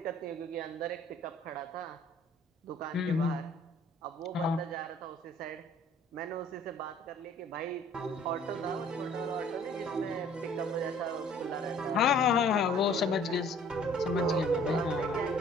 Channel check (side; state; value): both; normal; correlation 0.54